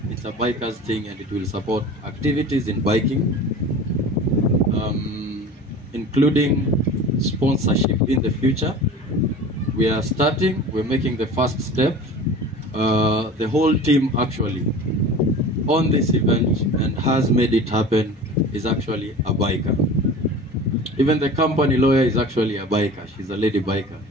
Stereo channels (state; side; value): normal; both; correlation 0.38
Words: thing, and it will support activities in biking, including sponsorship in the future. We are starting, we're making the first step. The whole team actually on this event and has made it happen is actually a biker. Even the company lawyer is actually a biker. She's a lady biker.